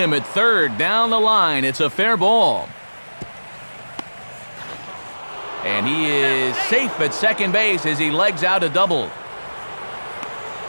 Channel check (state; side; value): inverted; both; correlation -1.00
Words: at third. Down the line, it's a fair ball. And he is safe at second base as he legs out a double.